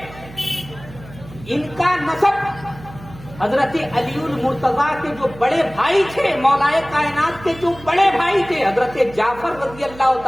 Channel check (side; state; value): right; noise; hum, 18 dB below the sound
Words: ان کا نسب حضرت علی المرتضیٰ کے جو بڑے بھائی تھے، مولائے کائنات کے جو بڑے بھائی تھے حضرت جعفر رضی اللہ